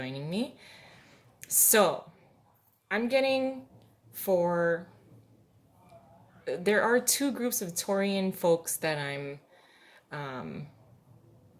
me. So, I'm getting for there are two groups of Taurian folks that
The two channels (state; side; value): identical; both; correlation 1.00